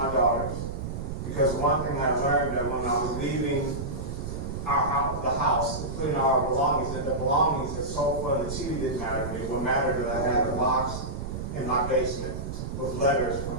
daughters, because one thing I learned that when I was leaving the house, including our belongings, that the belongings, the sofa and the TV didn't matter to me. What mattered is I had a box in my basement with letters from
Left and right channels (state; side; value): noise; right; rumble, 6 dB below the sound